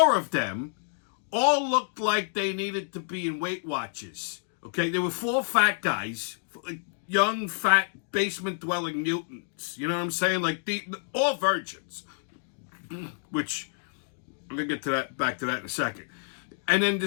of them all looked like they needed to be in Weight Watchers. Okay, there were 4 fat guys, like young, fat, basement-dwelling mutants. You know what I'm saying? Like, all virgins. Which, I'm going to get to that, back to that in a second. And then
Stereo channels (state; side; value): silent; right; digital silence